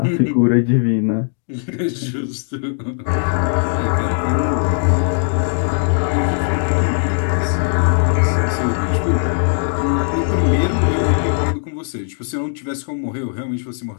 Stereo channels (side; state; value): right; silent; digital silence